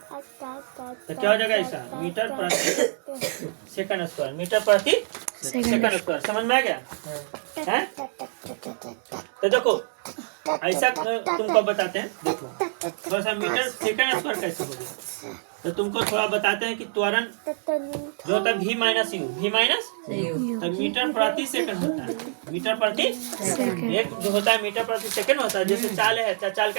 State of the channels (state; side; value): silent; left; digital silence